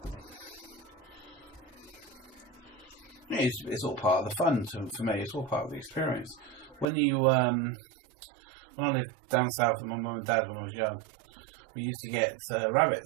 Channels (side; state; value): left; drops out; at 6.9 s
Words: It's all part of the fun for me. It's all part of the experience. When I lived down south with my mum and dad when I was young, we used to get